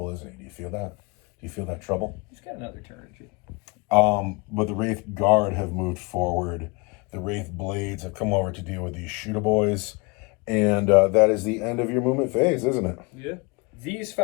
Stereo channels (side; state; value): right; quieter; 28.8 dB